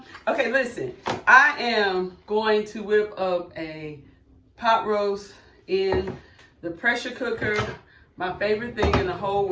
Okay, listen. I am going to whip up a pot roast in the pressure cooker. My favorite thing in the whole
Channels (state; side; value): identical; both; correlation 1.00